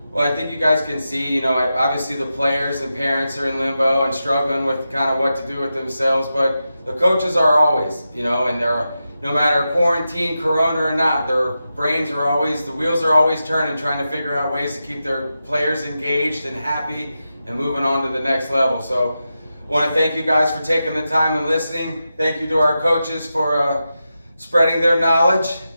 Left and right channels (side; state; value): both; inverted; correlation -0.90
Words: Well, I think you guys can see, you know, obviously the players and parents are in limbo and struggling with kind of what to do with themselves, but the coaches are always, you know, and they're, no matter quarantine, corona or not, their brains are always, the wheels are always turning, trying to figure out ways to keep their players engaged and happy and moving on to the next level. So I want to thank you guys for taking the time and listening. Thank you to our coaches for spreading their knowledge,